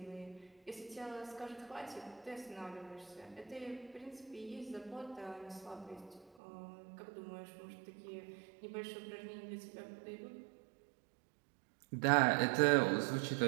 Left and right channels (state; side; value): drops out; left; at 6.3 s